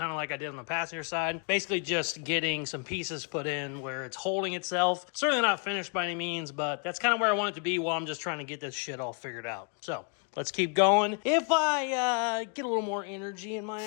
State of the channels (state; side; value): quieter; right; 39.9 dB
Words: of like I did on the passenger side. Basically just getting some pieces put in where it's holding itself. Certainly not finished by any means, but that's kind of where I want it to be while I'm just trying to get this shit all figured out. So let's keep going. If I get a little more energy in my